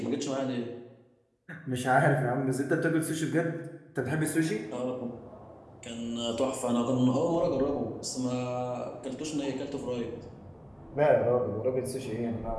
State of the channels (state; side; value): identical; both; correlation 1.00